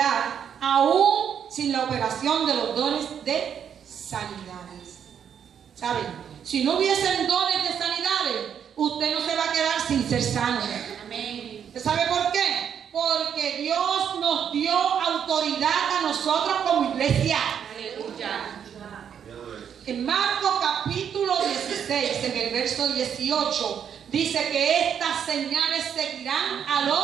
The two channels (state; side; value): quieter; left; 8.3 dB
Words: aún sin la operación de los dones de sanidades. ¿Saben? Si no hubiesen dones de sanidades, usted no se va a quedar sin ser sano. Amén. ¿Usted sabe por qué? Porque Dios nos dio autoridad a nosotros como iglesia. Aleluya. En Marcos capítulo 16, en el verso 18, dice que estas señales seguirán a